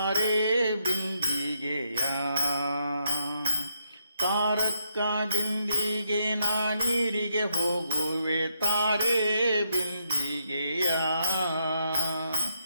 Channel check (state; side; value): inverted; both; correlation -0.78